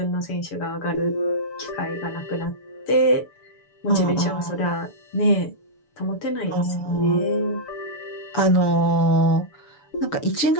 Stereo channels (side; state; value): right; late; 6.9 ms